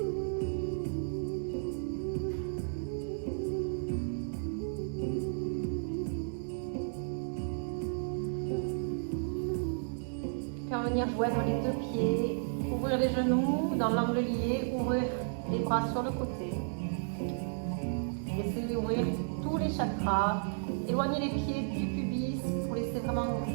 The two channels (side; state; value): left; silent; digital silence